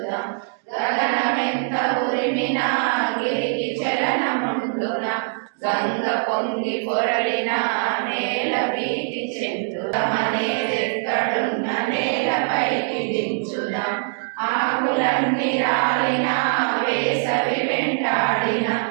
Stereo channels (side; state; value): left; silent; digital silence